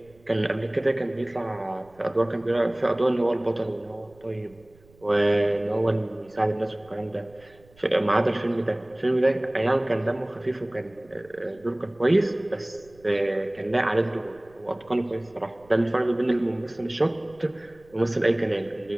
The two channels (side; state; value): right; noise; rumble, 28 dB below the sound